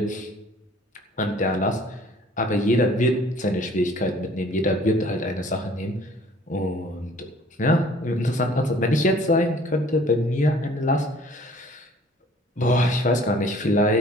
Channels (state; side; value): normal; both; correlation 0.54